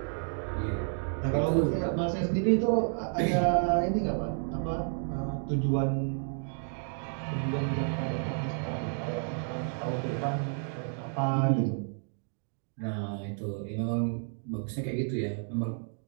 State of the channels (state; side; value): silent; left; 57 dB below the other